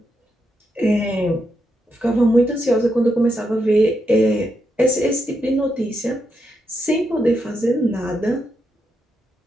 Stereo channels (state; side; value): normal; both; correlation 0.83